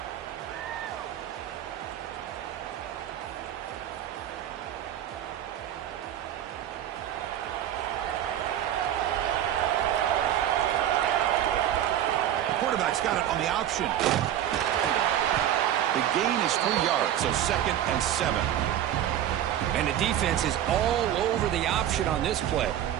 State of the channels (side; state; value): left; quieter; 11.3 dB